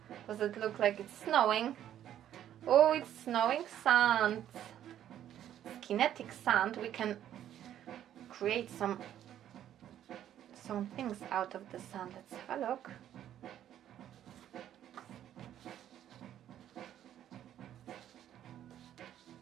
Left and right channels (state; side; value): quieter; left; 11.0 dB